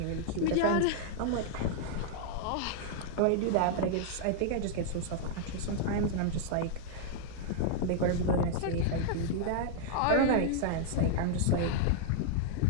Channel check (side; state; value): both; different; correlation -0.01